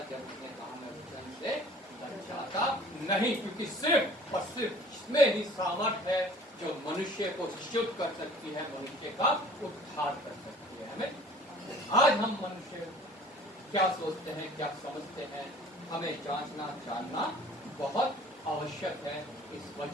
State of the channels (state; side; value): normal; both; correlation 0.49